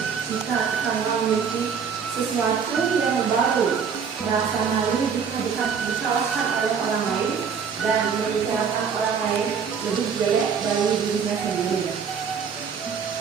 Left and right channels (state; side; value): quieter; left; 6.6 dB